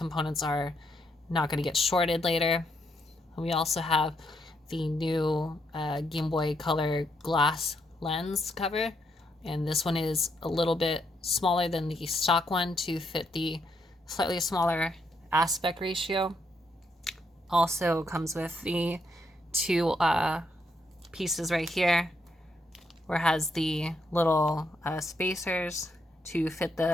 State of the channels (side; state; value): both; normal; correlation 0.77